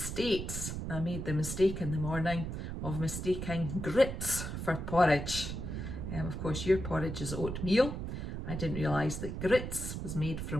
I made the mistake in the morning of mistaking grits for porridge. Of course, your porridge is oatmeal. I didn't realise that grits was made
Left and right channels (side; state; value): right; noise; rumble, 5 dB below the sound